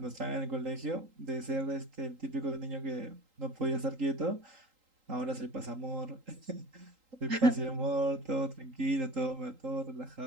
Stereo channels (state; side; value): late; left; 3.8 ms